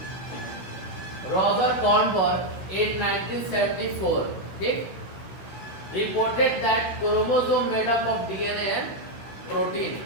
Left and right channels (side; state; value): right; late; 16 ms